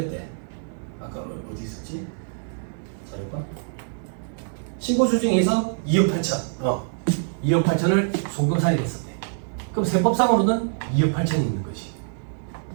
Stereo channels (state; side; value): silent; left; digital silence